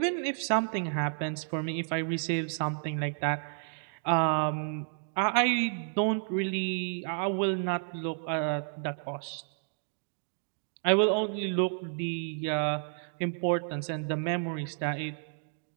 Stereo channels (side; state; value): left; silent; digital silence